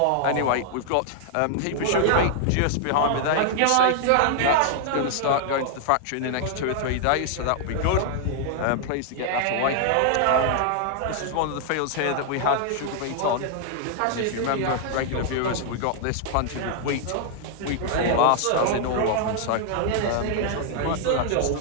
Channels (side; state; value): both; different; correlation 0.00